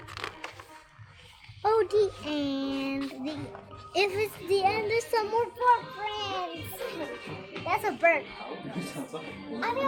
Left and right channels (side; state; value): both; identical; correlation 1.00